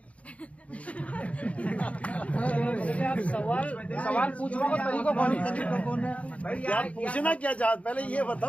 सवाल पूछने का तरीका कौन है? क्या पूछना क्या चाहते? पहले ये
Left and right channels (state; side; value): late; right; 0.065 ms